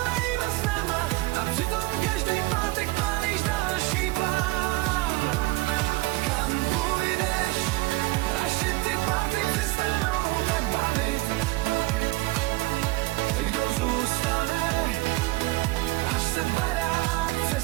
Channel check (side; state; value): left; quieter; 20.7 dB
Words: snama a přitom každý pátek pálíš další plán. Kam půjdeš, až se ty party přestanou tak bavit? Kdo zůstane, až se barák